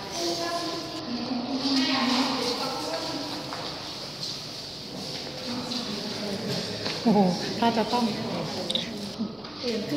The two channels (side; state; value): right; noise; hum, 28 dB below the sound